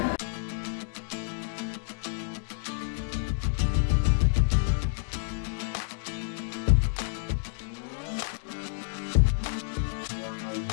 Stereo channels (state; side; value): silent; right; digital silence